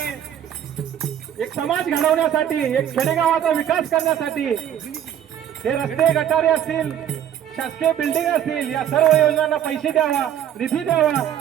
एक समाज घडवण्यासाठी, एक खेडेगावाचा विकास करण्यासाठी हे रस्ते गटारे असतील, शासकीय बिल्डिंग असतील, या सर्व योजनांना पैसे द्यावा, निधी द्यावा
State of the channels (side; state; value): left; quieter; 10.1 dB